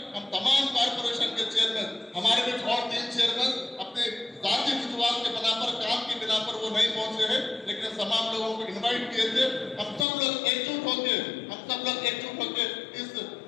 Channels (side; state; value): right; drops out; at 10.1 s